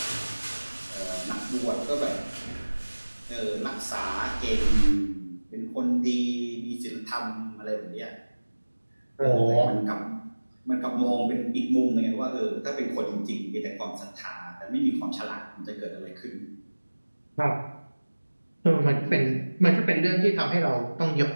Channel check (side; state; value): both; inverted; correlation -1.00